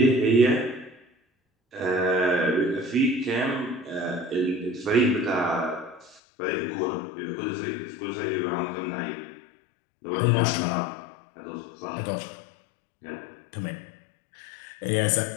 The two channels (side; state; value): right; drops out; at 6.2 s